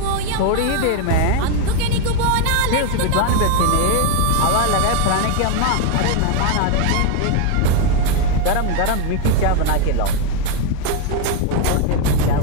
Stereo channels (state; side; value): different; both; correlation 0.01